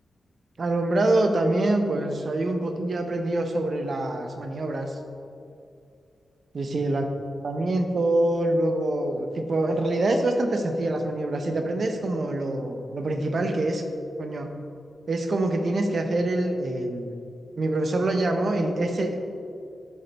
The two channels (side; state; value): both; normal; correlation 0.89